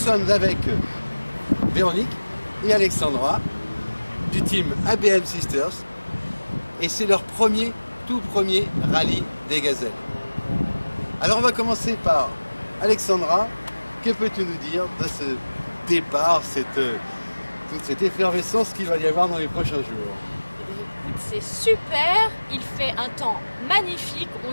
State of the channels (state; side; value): inverted; both; correlation -1.00